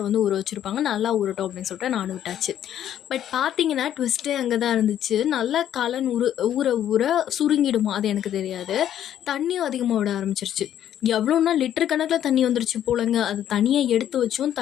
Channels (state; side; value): quieter; right; 10.7 dB